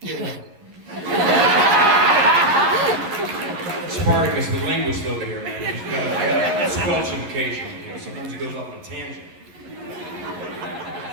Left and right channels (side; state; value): left; late; 11 ms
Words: know? Rob? Spartacus, the linguist over here, man. He's got squelch him occasionally, you know? Sometimes he goes off on a tangent.